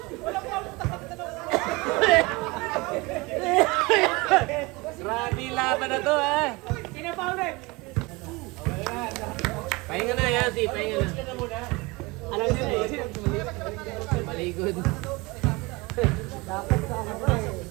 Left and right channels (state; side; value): quieter; left; 24.6 dB